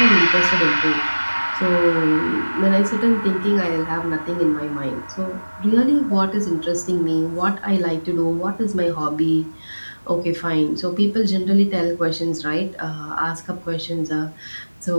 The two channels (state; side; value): inverted; both; correlation -1.00